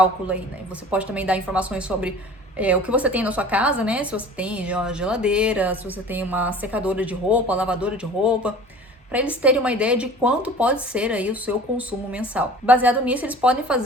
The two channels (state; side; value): normal; both; correlation 0.43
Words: aí, né. Você pode também dar informações sobre o que você tem na sua casa, né, se você tem uma geladeira, se você tem uma secadora de roupa, lavadora de roupa, para eles terem uma ideia de quanto pode ser aí o seu consumo mensal. Baseado nisso, eles podem